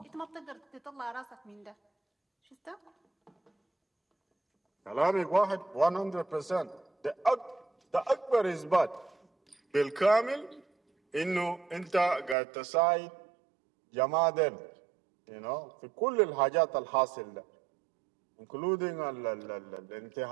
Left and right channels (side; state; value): left; drops out; at 12.4 s